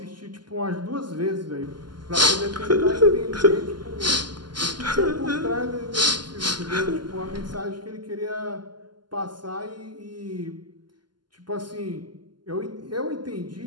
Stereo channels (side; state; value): left; late; 0.71 ms